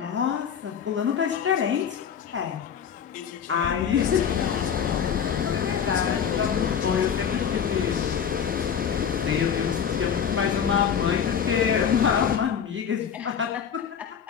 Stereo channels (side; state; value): right; quieter; 7.8 dB